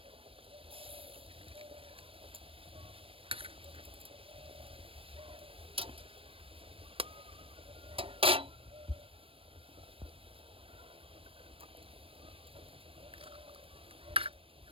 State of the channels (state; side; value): late; left; 0.26 ms